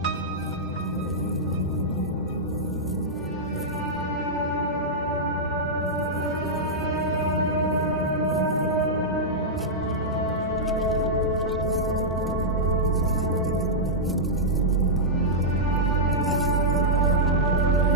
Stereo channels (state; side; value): normal; both; correlation -0.09